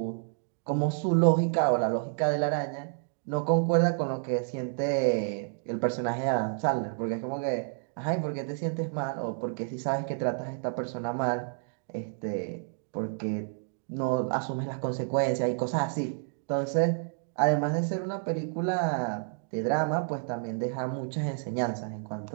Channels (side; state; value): left; silent; digital silence